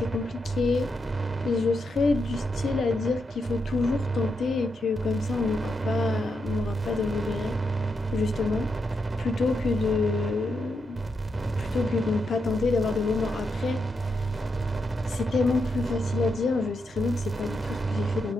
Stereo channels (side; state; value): both; normal; correlation 0.83